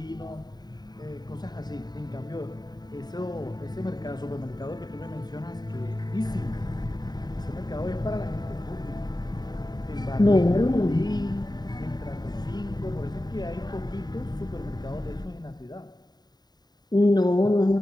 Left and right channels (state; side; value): late; right; 0.20 ms